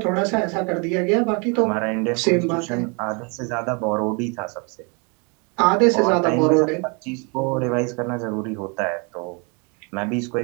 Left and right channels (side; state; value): left; quieter; 33.5 dB